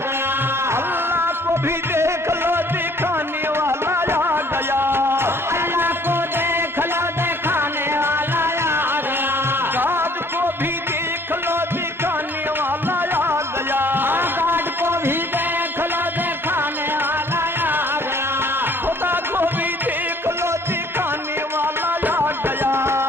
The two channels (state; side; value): normal; both; correlation 0.58